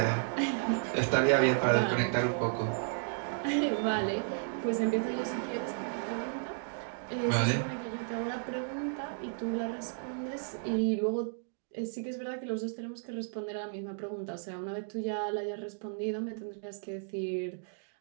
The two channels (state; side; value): silent; left; digital silence